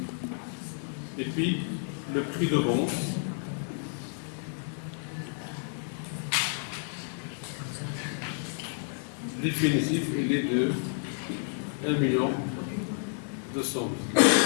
Et puis, le prix de vente, définitif, il est de 1 million 200 000.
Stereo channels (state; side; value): silent; right; 55 dB below the other